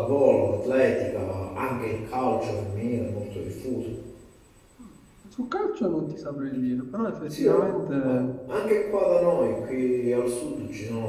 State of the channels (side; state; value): both; identical; correlation 1.00